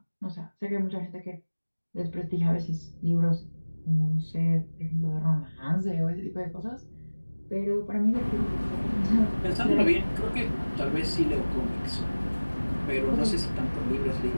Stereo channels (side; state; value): both; inverted; correlation -1.00